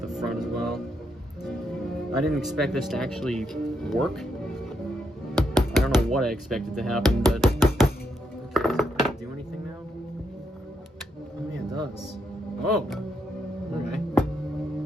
the front as well. I didn't expect this to actually work. I don't know what I expected to happen, but... Okay, does it do anything now? Oh yeah, it does. Oh! Okay.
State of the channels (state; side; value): normal; both; correlation 0.79